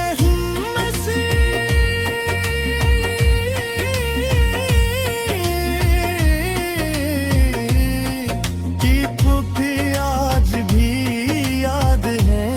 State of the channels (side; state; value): both; identical; correlation 1.00